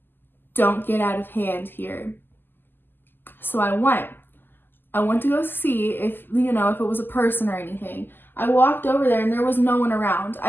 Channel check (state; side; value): late; right; 0.094 ms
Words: don't get out of hand here. So I went to go see if it was a person or anything. I walked over there, and there was no one around.